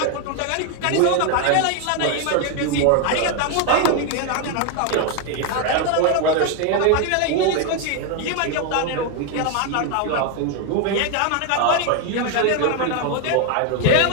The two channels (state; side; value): different; both; correlation 0.01